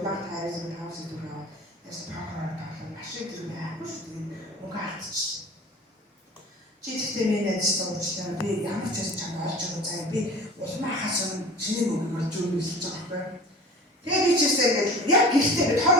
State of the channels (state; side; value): normal; both; correlation 0.40